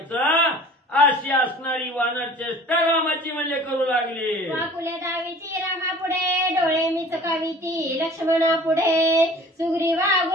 अशी असणारी वानर चेष्टा रामाची म्हणजे करू लागली. वाकुल्या दावीची रामा पुढे, डोळे मिचकावीती लक्ष्मणा पुढे. सुग्रीवा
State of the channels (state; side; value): normal; both; correlation 0.46